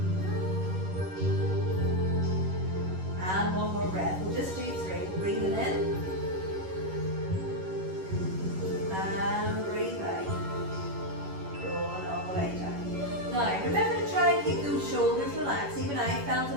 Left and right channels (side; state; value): left; late; 11 ms